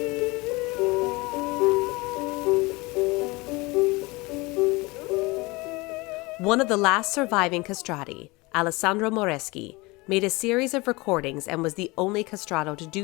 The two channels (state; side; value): quieter; right; 24.0 dB